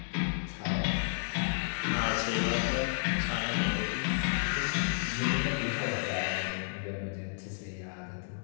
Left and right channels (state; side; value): silent; right; digital silence